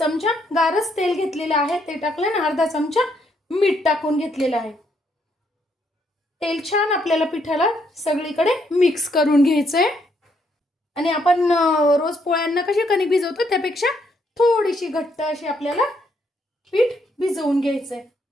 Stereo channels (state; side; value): normal; both; correlation 0.73